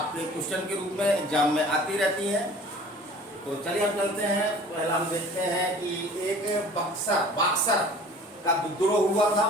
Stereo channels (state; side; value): normal; both; correlation 0.46